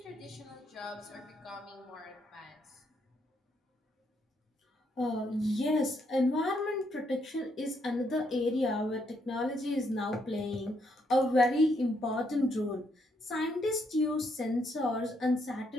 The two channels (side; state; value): both; normal; correlation 0.75